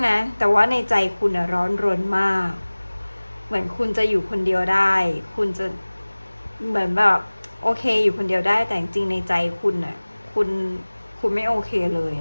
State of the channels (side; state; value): both; inverted; correlation -1.00